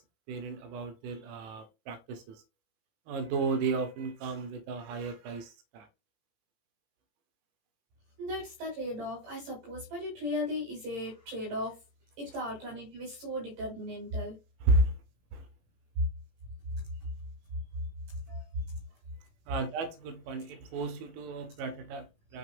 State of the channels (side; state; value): left; late; 18 ms